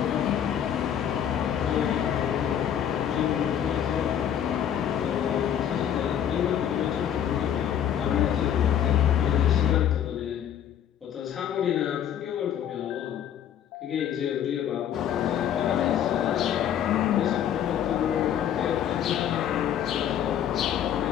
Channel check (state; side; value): quieter; right; 9.7 dB